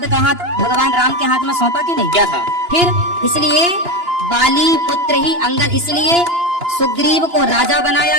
का हाथ भगवान राम के हाथ में सौंपा कि नहीं? क्या था? फिर इसलिए बाली पुत्र ही अंगद, इसलिए सुग्रीव को राजा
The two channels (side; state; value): left; late; 2.9 ms